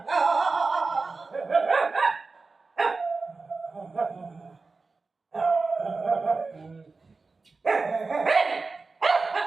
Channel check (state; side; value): quieter; left; 4.0 dB